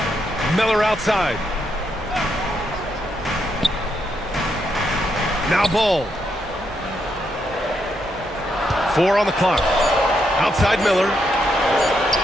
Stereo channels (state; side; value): normal; both; correlation 0.79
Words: Miller outside. Now Ball. 4 on the clock. Outside Miller.